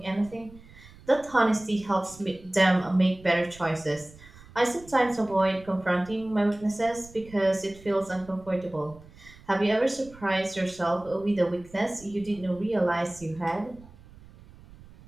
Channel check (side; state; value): right; noise; rumble, 22 dB below the sound